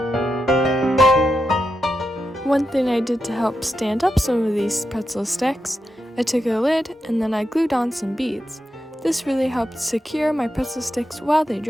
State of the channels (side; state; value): both; normal; correlation 0.87